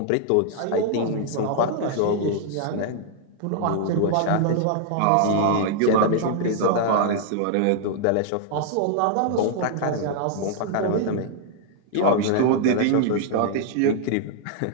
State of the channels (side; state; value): both; different; correlation -0.01